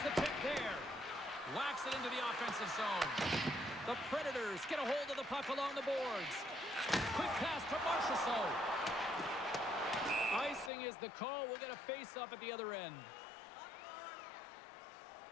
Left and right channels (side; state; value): right; drops out; at 10.7 s